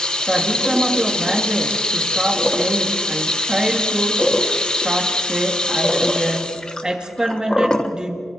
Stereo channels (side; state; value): both; normal; correlation 0.77